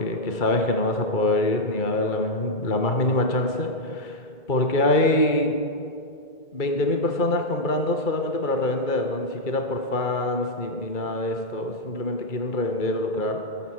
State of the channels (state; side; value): late; right; 2.3 ms